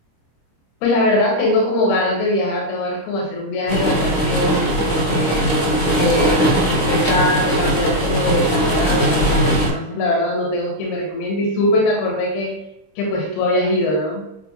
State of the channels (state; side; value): late; right; 26 ms